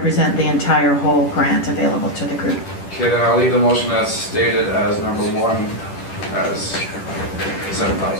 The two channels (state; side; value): late; right; 10 ms